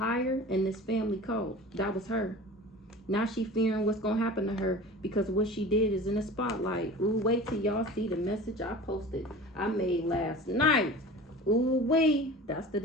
and this family cult. That was her. Now she fearing what's gonna happen to her because what she did is in the spotlight. Ooh, wait till y'all see the message I posted. I made last night. Ooh, wait. That's the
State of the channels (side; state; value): both; normal; correlation 0.38